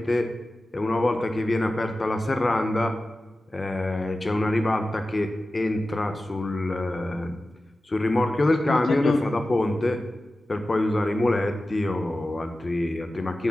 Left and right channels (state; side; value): normal; both; correlation 0.95